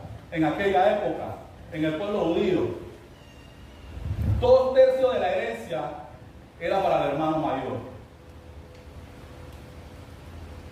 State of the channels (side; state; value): both; identical; correlation 1.00